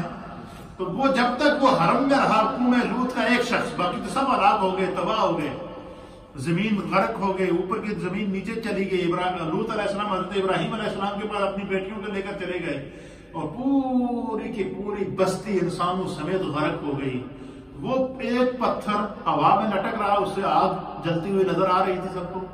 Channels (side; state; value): both; identical; correlation 1.00